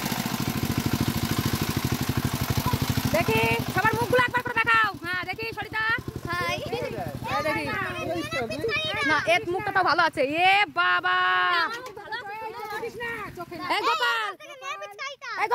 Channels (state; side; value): identical; both; correlation 1.00